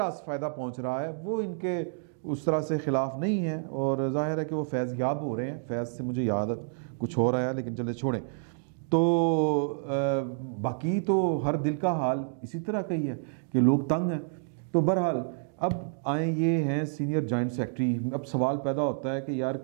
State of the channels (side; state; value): left; silent; digital silence